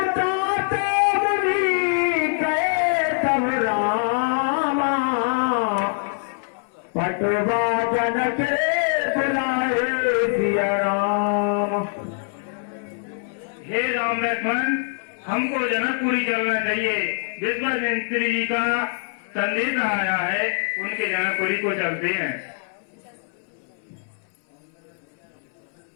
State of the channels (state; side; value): silent; right; 61 dB below the other